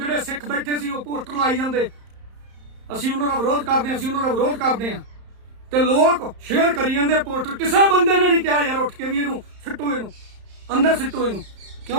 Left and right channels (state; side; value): late; left; 31 ms